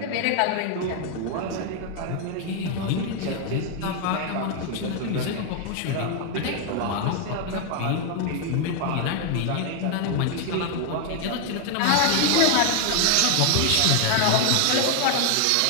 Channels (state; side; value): different; both; correlation 0.00